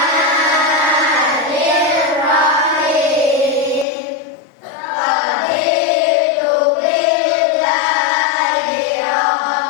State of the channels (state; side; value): drops out; right; at 3.9 s